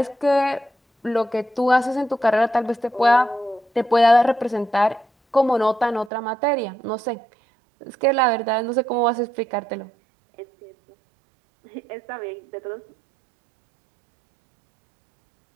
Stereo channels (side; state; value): left; drops out; at 6.1 s